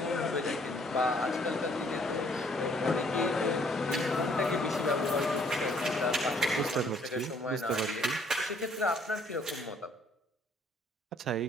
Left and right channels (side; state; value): both; normal; correlation 0.63